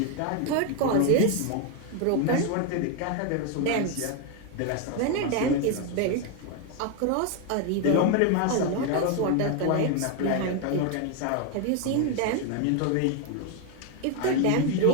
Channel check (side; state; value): both; different; correlation 0.01